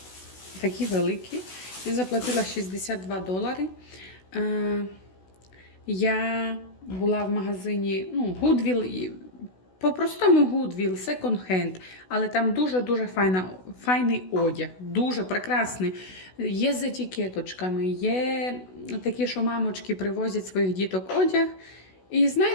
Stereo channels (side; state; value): right; late; 16 ms